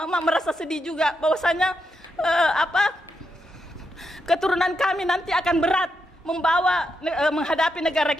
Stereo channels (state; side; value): normal; both; correlation 0.83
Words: merasa sedih juga bahwasanya keturunan kami nanti akan berat menghadapi negara